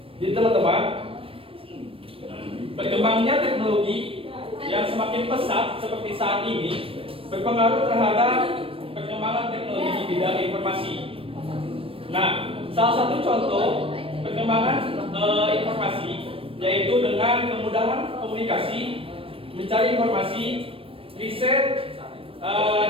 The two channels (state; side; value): late; left; 0.27 ms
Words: Jadi teman-teman, berkembangnya teknologi yang semakin pesat seperti saat ini berpengaruh terhadap perkembangan teknologi di bidang informasi. Nah, salah satu contoh perkembangan informasi yaitu dengan kemudahan komunikasi, mencari informasi, riset,